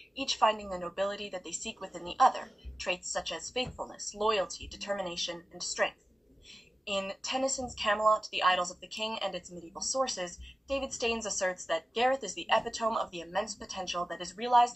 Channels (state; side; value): normal; both; correlation 0.95